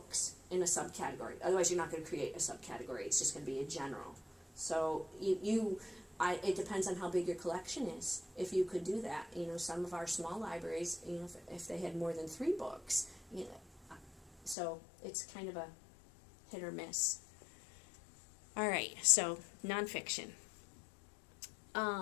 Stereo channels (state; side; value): drops out; right; at 14.6 s